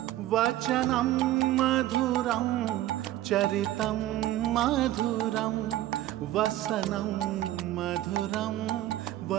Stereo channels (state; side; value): quieter; left; 14.4 dB